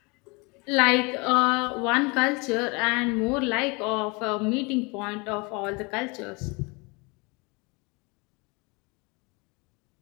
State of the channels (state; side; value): quieter; right; 28.5 dB